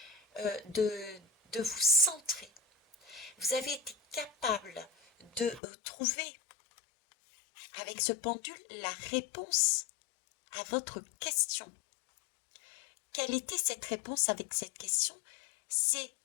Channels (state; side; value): drops out; right; at 5.6 s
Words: de vous centrer. Vous avez été capable de trouver avec ce pendule la réponse à votre question. Quelle était cette réponse avec cette question? C'est